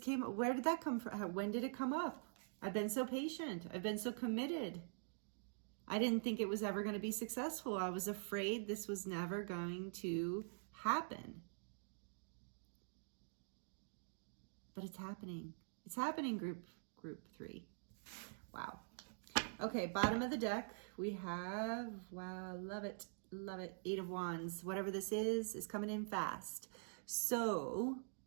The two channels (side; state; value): left; silent; digital silence